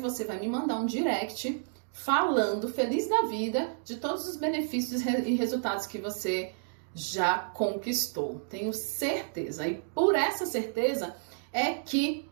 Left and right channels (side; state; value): left; silent; digital silence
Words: vai me mandar um direct falando, feliz da vida, de todos os benefícios e resultados que você já conquistou. Tenho certeza. E por essa certeza é que